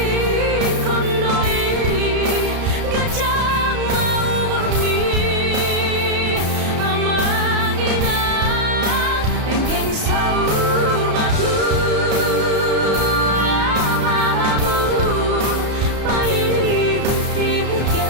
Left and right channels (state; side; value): late; left; 33 ms